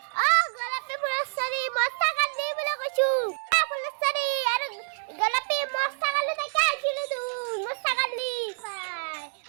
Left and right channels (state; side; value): silent; left; digital silence